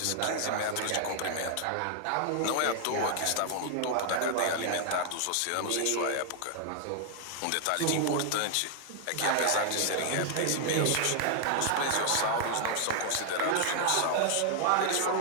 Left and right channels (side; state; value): both; different; correlation 0.00